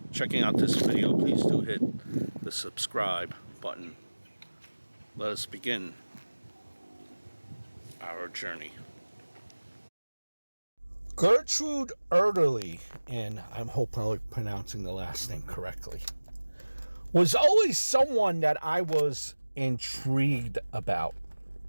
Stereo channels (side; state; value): both; inverted; correlation -1.00